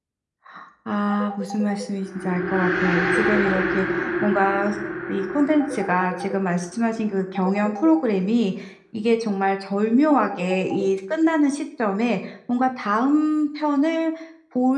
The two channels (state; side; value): identical; both; correlation 1.00